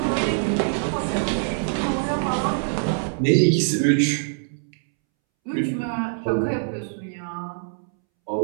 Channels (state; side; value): silent; left; 63 dB below the other